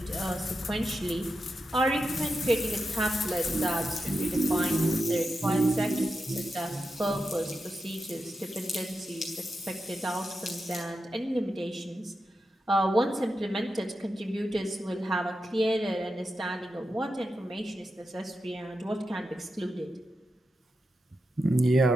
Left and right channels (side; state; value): both; normal; correlation 0.88